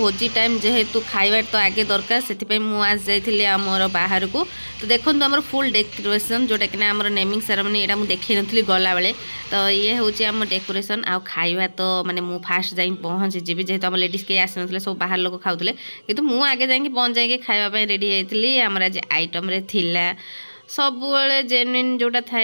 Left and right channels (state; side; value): inverted; both; correlation -1.00